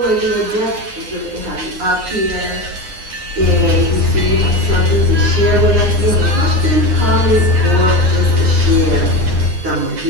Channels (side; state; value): left; late; 9.7 ms